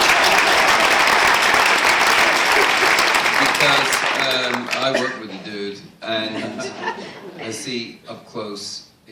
Because I work with the dude, and I see up close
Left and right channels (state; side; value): identical; both; correlation 1.00